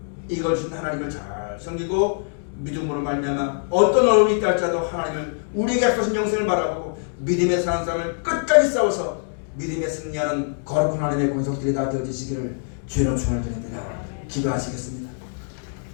이걸 준 하나님을 잘 섬기고 믿음으로 말미암아 어떤 어려움이 있다 할지라도 하나님을 우리에게 약속하신 영생을 바라보고 믿음의 사는 삶을 끝까지 싸워서 믿음에 승리하는 거룩한 하나님의 권속들이 다 되어지시기를 주의 이름으로 축원을 드립니다. 기도하시겠습니다.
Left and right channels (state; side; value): silent; right; 63 dB below the other